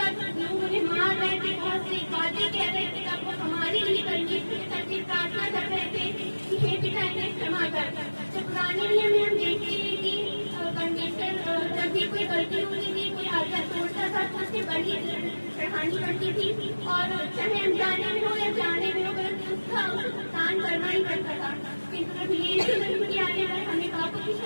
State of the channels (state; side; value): inverted; both; correlation -1.00